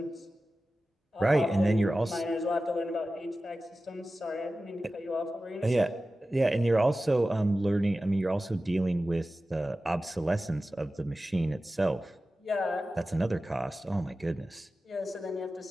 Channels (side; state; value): both; normal; correlation 0.95